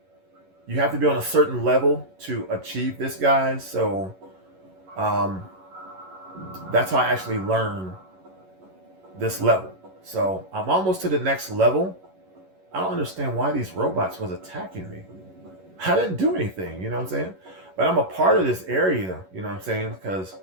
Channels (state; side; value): late; left; 11 ms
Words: you have to be on a certain level to achieve this, guys. So that's how I actually learned this level. So I'm almost to the next level. I don't understand why these robots was attacking me. I didn't do anything, you know what I'm saying? But I'm a part of this area, you know what I'm saying? Because